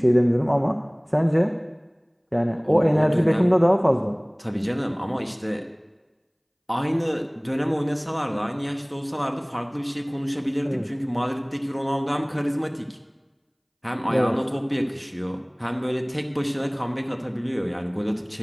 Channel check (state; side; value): identical; both; correlation 1.00